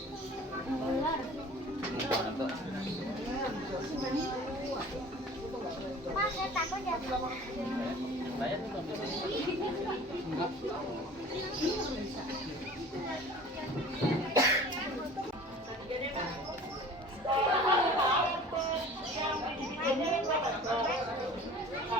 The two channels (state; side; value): normal; both; correlation 0.44